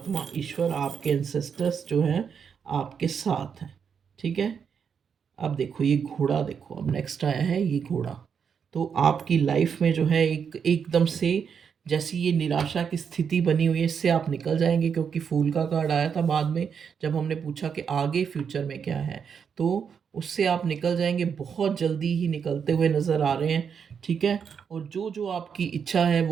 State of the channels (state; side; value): quieter; left; 6.9 dB